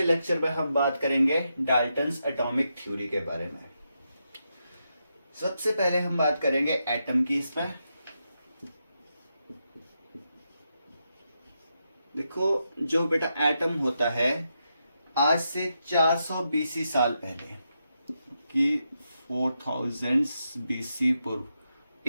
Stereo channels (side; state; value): both; inverted; correlation -0.84